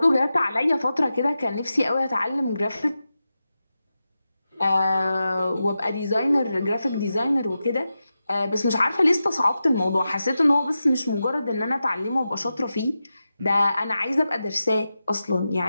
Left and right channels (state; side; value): inverted; both; correlation -0.91